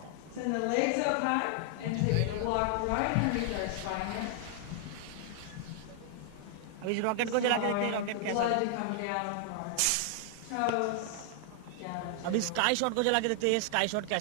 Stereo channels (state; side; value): different; both; correlation 0.00